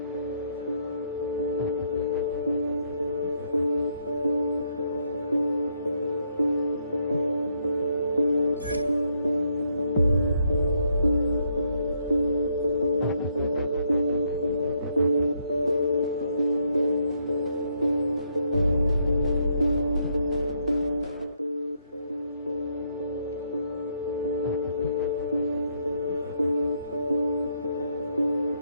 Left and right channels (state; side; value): inverted; both; correlation -0.74